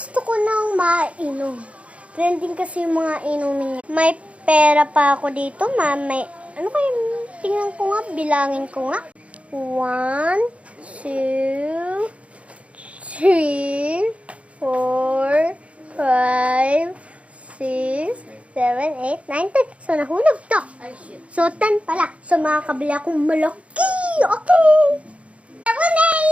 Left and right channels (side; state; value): left; late; 0.063 ms